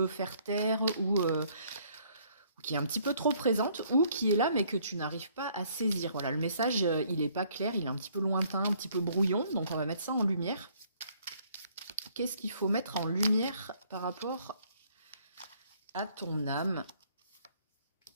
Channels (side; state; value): both; inverted; correlation -0.63